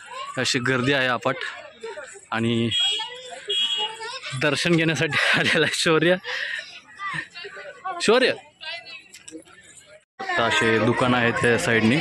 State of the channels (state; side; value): identical; both; correlation 1.00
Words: अशी गर्दी आहे अफाट आणि दर्शन घेण्यासाठी आलेला शौर्य. आता असे दुकान आहेत त्या साईडने